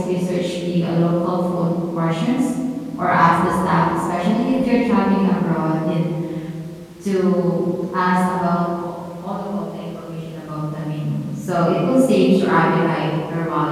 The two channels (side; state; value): both; identical; correlation 1.00